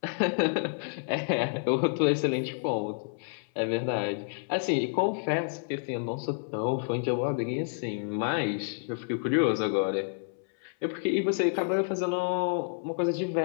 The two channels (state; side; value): silent; right; 58 dB below the other